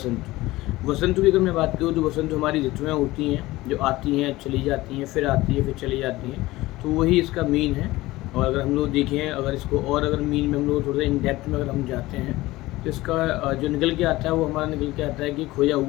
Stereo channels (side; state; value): right; quieter; 18.6 dB